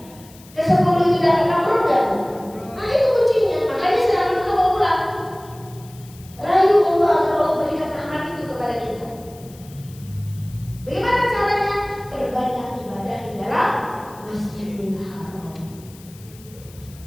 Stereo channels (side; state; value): left; noise; hiss, 23 dB below the sound